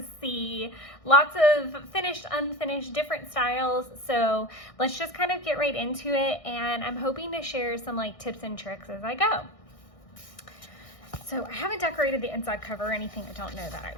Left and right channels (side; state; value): right; late; 1.6 ms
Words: see lots of finished, unfinished, different styles. So let's just kind of get right into it, and I'm hoping to share some tips and tricks as I go. So I haven't decorated the inside cover or anything. I don't know that